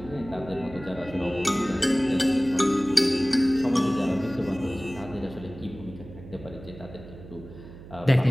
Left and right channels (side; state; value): right; noise; hum, 16 dB below the sound